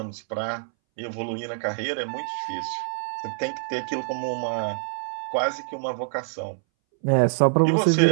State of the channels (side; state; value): left; silent; 60 dB below the other